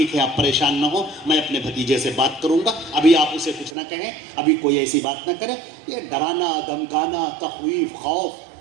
ہے آپ پریشان نہ ہو، میں اپنے بھتیجے سے بات کروں گا، ابھی آپ اسے کچھ نہ کہیں، ابھی کوئی ایسی بات نہ کرے، یہ ڈرانا دھمکانا تخویف خوف۔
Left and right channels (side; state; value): left; drops out; at 3.8 s